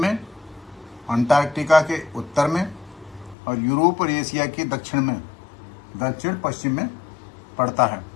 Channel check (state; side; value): drops out; right; at 3.4 s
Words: अंटार्कटिका के उत्तर में और यूरोप और एशिया के दक्षिण पश्चिम में पड़ता है।